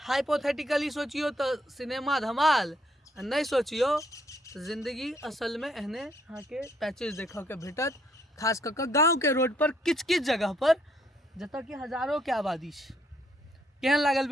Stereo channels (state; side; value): normal; both; correlation 0.69